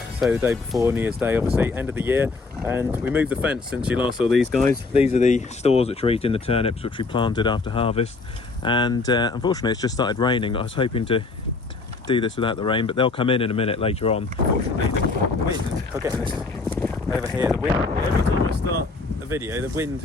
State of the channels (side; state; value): right; quieter; 3.9 dB